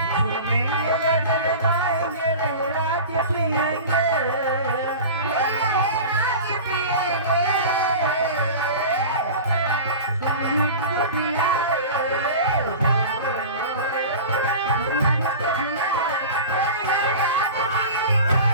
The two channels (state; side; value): inverted; both; correlation -0.34